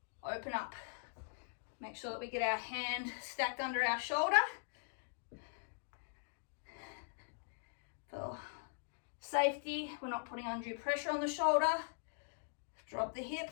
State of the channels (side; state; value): right; silent; digital silence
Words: open up. Make sure that we get our hand stacked under our shoulder. For safety, we're not putting undue pressure on the shoulder. Drop the hip,